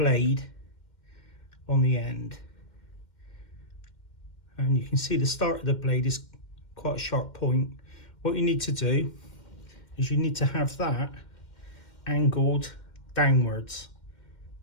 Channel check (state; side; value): late; right; 2.1 ms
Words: on the end, and you can see the start of the blade is quite a sharp point. What you need to do is you need to have that angled downwards,